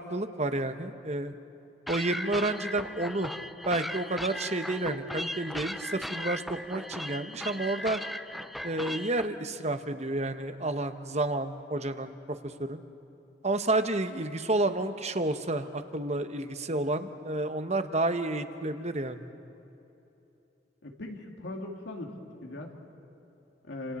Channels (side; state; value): both; normal; correlation 0.36